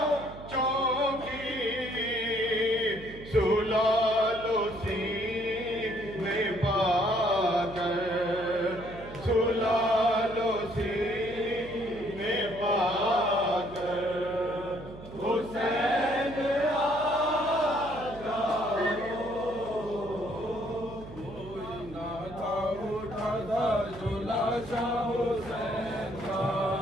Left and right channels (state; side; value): noise; right; hum, 15 dB below the sound